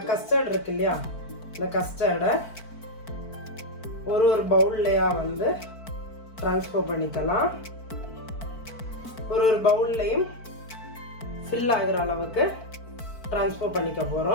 கஸ்டர்ட் இருக்கு இல்லையா, இந்த கஸ்டர்டை ஒரு பவுல்லையாக வந்து ட்ரான்ஸ்ஃபர் பண்ணிக்கலாம். ஒரு பவுல்லையும் ஃபில் ஆகிற அளவுக்கு ட்ரான்ஸ்ஃபர் பண்ணிக்க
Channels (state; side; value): late; right; 4.5 ms